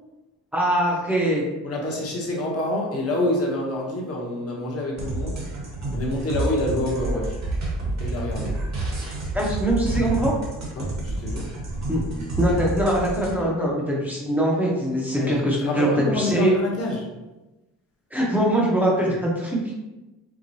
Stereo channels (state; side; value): normal; both; correlation 0.47